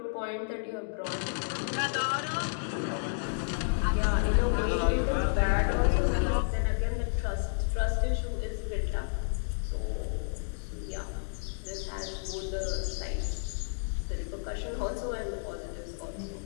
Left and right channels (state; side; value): silent; right; digital silence